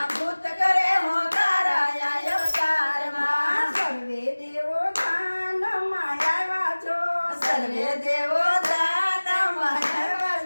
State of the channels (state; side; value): inverted; both; correlation -1.00